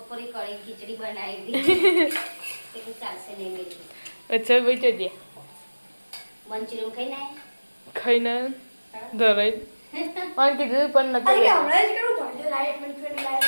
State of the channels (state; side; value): inverted; both; correlation -1.00